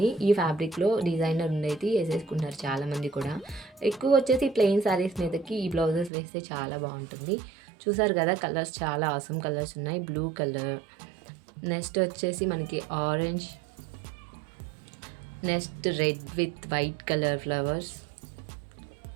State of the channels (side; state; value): left; drops out; at 6.1 s